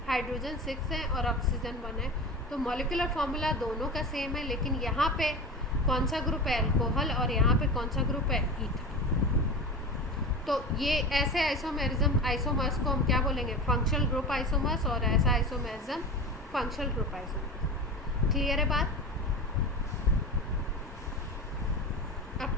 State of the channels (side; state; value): both; normal; correlation 0.29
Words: हाइड्रोजन 6 है और ऑक्सीजन 1 है, तो मॉलिक्यूलर फॉर्मूला दोनों का सेम है, लेकिन यहाँ पे कौन सा ग्रुप है अल्कोहल और यहाँ पे कौन सा ग्रुप है ईथर। तो ये ऐसे आइसोमर्स को हम क्या बोलेंगे, फंक्शनल ग्रुप आइसोमर्स, और ऐसा isomerism functional group isomers. Clear है बात? अब